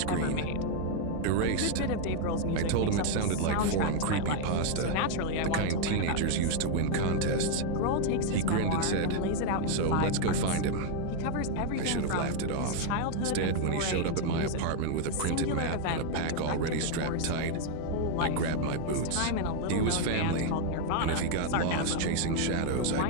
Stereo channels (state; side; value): different; both; correlation 0.00